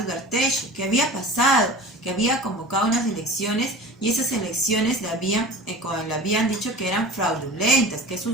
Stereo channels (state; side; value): normal; both; correlation 0.37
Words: Ugarteche. ¿Qué había pasado? Que había convocado unas elecciones y esas elecciones le habían dicho que eran fraudulentas, que